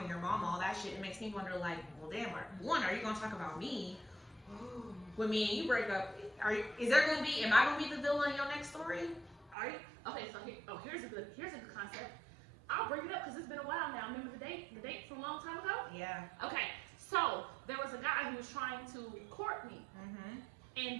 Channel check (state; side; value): drops out; left; at 9.6 s